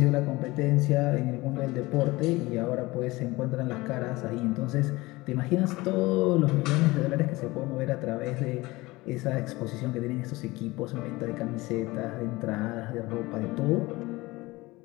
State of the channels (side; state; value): right; quieter; 21.0 dB